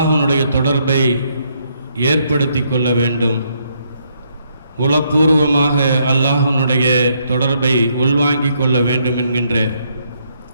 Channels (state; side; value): inverted; both; correlation -0.73